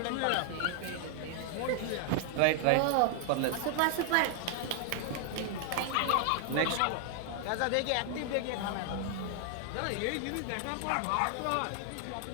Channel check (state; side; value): different; both; correlation 0.00